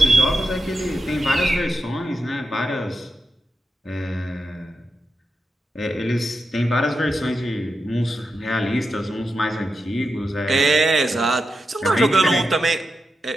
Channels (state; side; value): normal; both; correlation 0.88